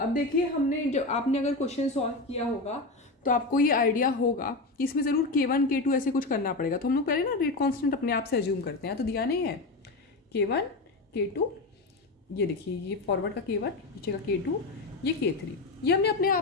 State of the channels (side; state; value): right; quieter; 3.2 dB